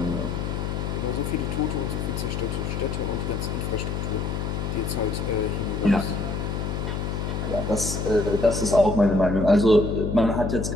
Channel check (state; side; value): noise; left; hum, 2 dB below the sound